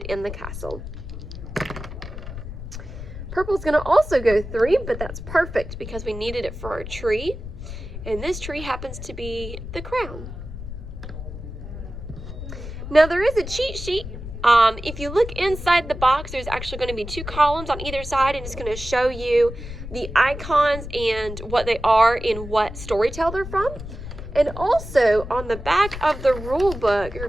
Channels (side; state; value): left; noise; rumble, 10 dB below the sound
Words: in the castle. Purple's going to also go 3, but that's perfect because we needed it for our tree. And this tree happens to be the crown. Now there is a cheat sheet. If you look inside the box, there's actually going to be 2 columns on either side, and it's going to show you the icons and what they are and what storytale they're from. And also on the back of the rule book, you're